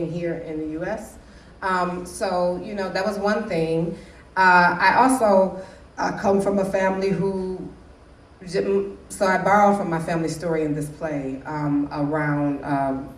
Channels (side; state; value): both; identical; correlation 1.00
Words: here in the U.S. So that was one thing. I also come from a family so I borrowed from my family story in this play around